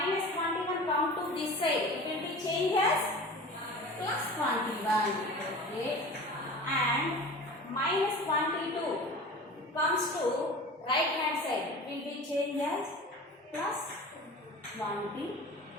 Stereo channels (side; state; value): both; normal; correlation 0.37